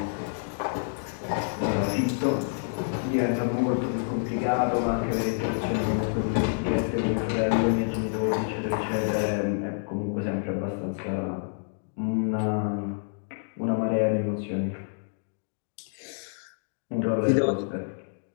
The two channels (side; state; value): right; silent; digital silence